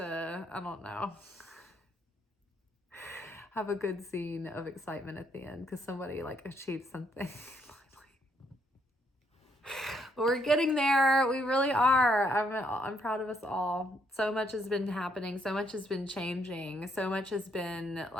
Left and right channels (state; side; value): normal; both; correlation 0.72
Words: I don't know, have a good scene of excitement at the end because somebody like achieved something. But we're getting there. We really are. I'm proud of us all. So much has been happening. So much has been changing. So much has been